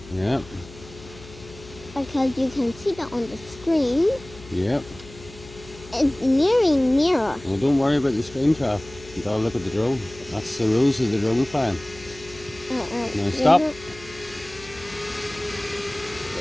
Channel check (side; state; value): left; noise; hum, 19 dB below the sound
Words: Yep. Because you can see that on the screen. Yep. It's nearing near us. Well, don't worry about the screen, Trav. You gotta look at the drone. That's the rules of the drone flying. Now stop.